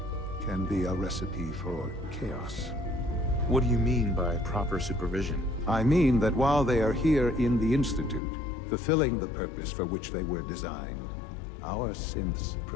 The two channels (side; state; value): right; drops out; at 8.2 s